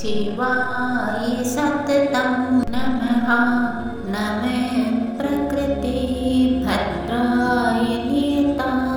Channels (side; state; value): both; identical; correlation 1.00